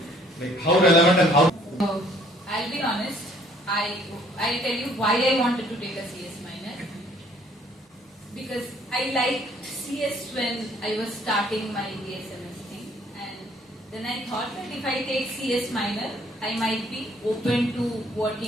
Like how relevant and how. So I'll be honest. I'll tell you why I wanted to take a CS minor. Because I liked CS when I was starting my BSMS thing, and then I thought that if I take CS minor, I might be open to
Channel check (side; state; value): both; normal; correlation 0.60